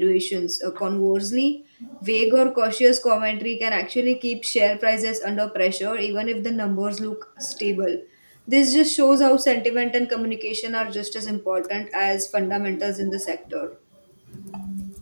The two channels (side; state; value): both; inverted; correlation -1.00